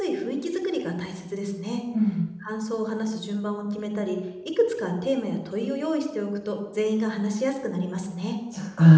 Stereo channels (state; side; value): identical; both; correlation 1.00